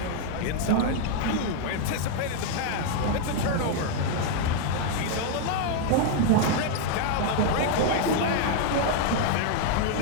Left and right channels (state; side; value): different; both; correlation 0.00